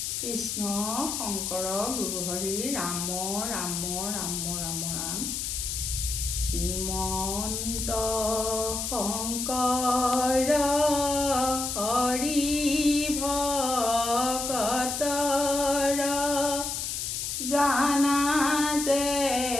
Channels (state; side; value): noise; left; hiss, 3 dB below the sound